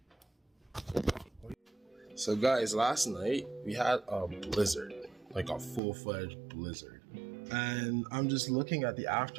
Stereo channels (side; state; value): left; drops out; at 5.8 s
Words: So guys, last night we had a blizzard, like a full-fledged blizzard. And I'm just looking at the